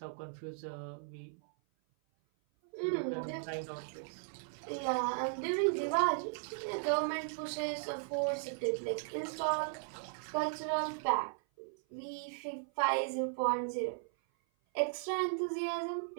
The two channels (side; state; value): left; silent; 53 dB below the other